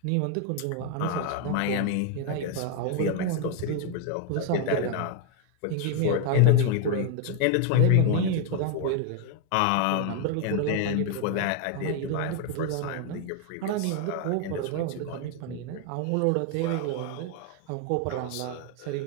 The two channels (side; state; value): both; different; correlation 0.01